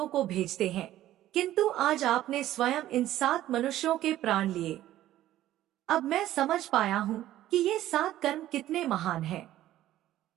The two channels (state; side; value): quieter; left; 13.7 dB